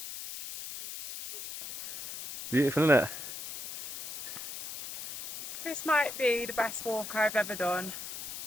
Beautiful, isn't it? This might be the best walk I've ever done.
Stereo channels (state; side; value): noise; left; hiss, 9 dB below the sound